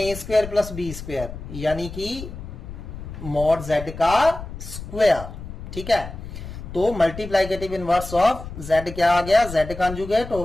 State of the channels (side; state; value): left; noise; rumble, 11 dB below the sound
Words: square plus B square, यानी कि मॉड z का स्क्वायर। ठीक है, तो मल्टीप्लाइकेटिव इनवर्स ऑफ z क्या आ गया, z conjugate